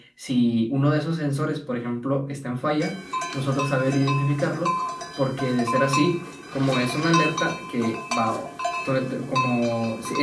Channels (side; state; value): both; identical; correlation 1.00